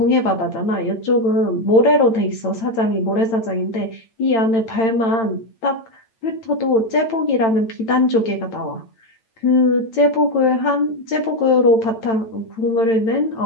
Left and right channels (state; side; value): late; right; 8.9 ms